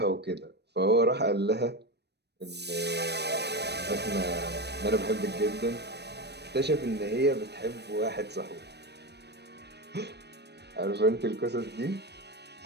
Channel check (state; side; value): late; left; 0.49 ms